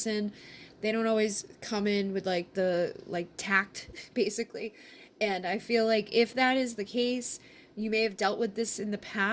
They don't always come in with like the tact, basically. And I feel like if that is the case, you may have dealt with this in the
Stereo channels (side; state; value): both; identical; correlation 1.00